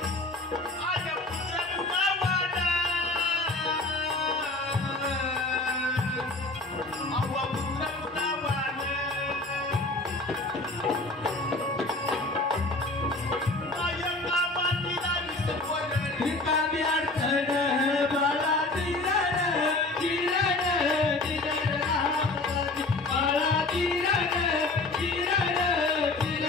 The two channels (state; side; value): quieter; right; 3.0 dB